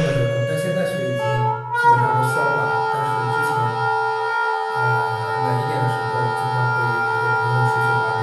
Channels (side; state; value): both; identical; correlation 1.00